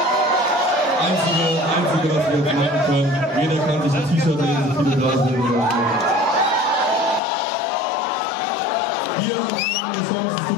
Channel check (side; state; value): right; drops out; at 7.2 s